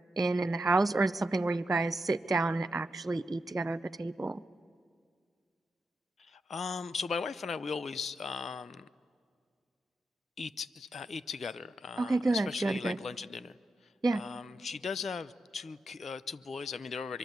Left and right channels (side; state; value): both; normal; correlation 0.86